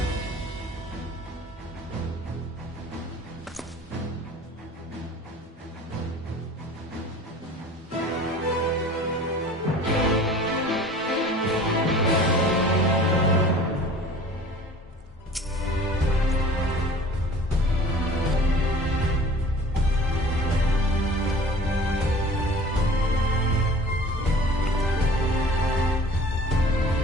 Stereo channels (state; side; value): normal; both; correlation 0.45